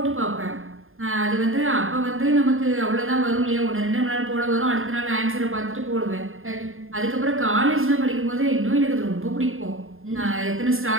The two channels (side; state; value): left; late; 0.60 ms